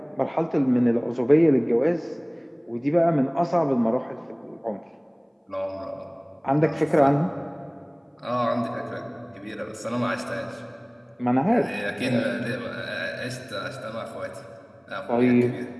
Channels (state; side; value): identical; both; correlation 1.00